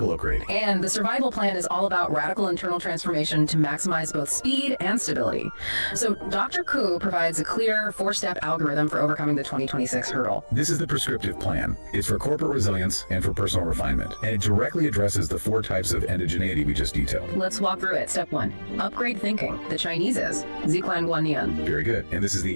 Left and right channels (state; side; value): inverted; both; correlation -1.00